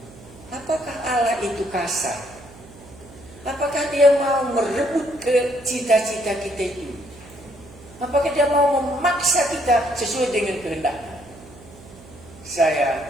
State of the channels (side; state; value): right; noise; hum, 20 dB below the sound